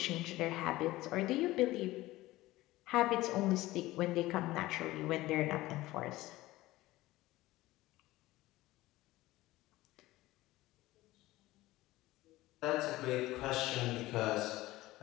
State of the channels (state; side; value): quieter; right; 17.7 dB